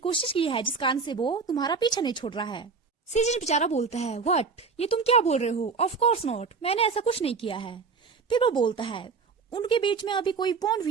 की है जिस कारण से वो तुम्हारा पीछा नहीं छोड़ रहा है? सीजिन बेचारा बोलता है, व्हाट, ये तुम क्या बोल रहे हो? ऑफ कोर्स नॉट, मैंने ऐसा कुछ नहीं किया है। फिर वो बोलता है, उनके बीच में अभी कोई बॉन्ड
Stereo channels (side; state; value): left; quieter; 5.0 dB